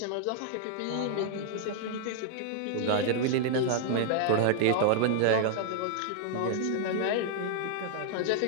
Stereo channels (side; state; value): both; different; correlation -0.01